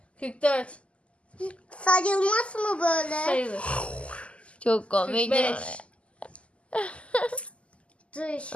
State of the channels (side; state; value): right; late; 0.058 ms